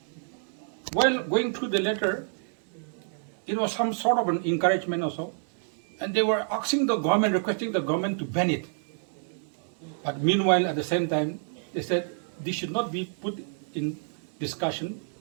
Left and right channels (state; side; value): silent; left; digital silence